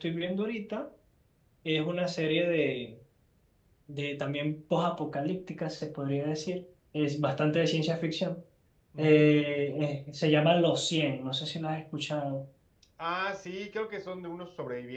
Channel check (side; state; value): both; identical; correlation 1.00